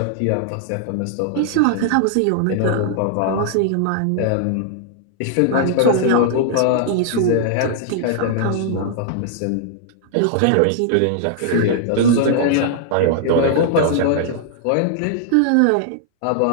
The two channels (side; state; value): both; different; correlation -0.01